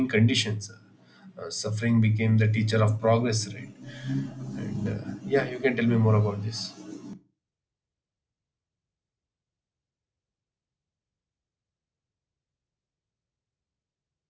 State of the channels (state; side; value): identical; both; correlation 1.00